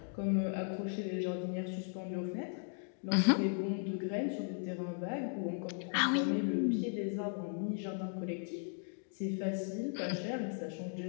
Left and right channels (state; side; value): silent; right; 53 dB below the other